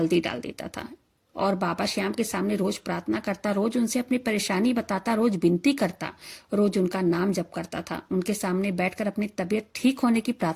डाल देता था और बाबा श्याम के सामने रोज प्रार्थना करता, रोज उनसे अपनी परेशानी बताता, रोज विनती करता, रोज उनका नाम जप करता था, उनके सामने बैठकर अपनी तबीयत ठीक होने की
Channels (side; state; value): both; identical; correlation 1.00